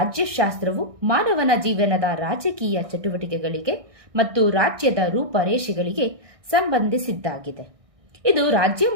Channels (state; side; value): late; left; 1.6 ms